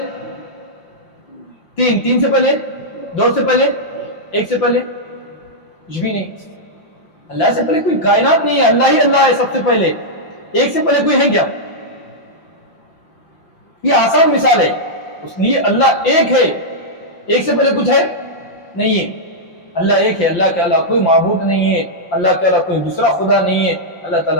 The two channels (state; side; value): late; right; 5.8 ms